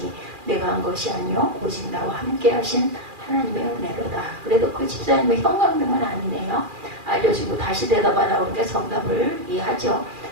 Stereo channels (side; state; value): left; late; 2.4 ms